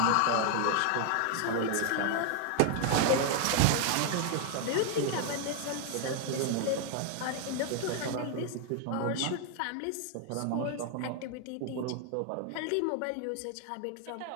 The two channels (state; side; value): different; both; correlation 0.00